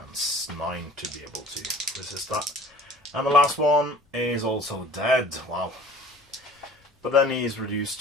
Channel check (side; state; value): both; normal; correlation 0.48